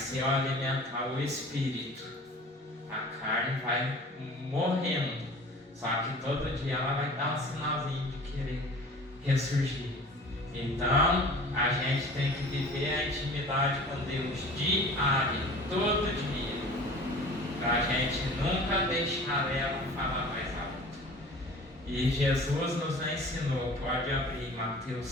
eu alimentar o espírito, a carne vai morrendo. Só que todo dia ela vai dar um sinalzinho de querer ressurgir. Então, a gente tem que viver a intimidade com Deus diária, todo dia, para a gente nunca deixar ela falar mais alto. E Jesus nos ensinou, pode abrir Mateus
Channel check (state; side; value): normal; both; correlation 0.43